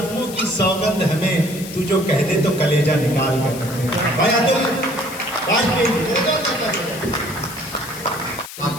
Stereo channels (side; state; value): left; noise; hiss, 13 dB below the sound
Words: की सौगंध हमें, तू जो कह दे तो कलेजा निकाल कर रख दें। भाई अतुल वाजपेयी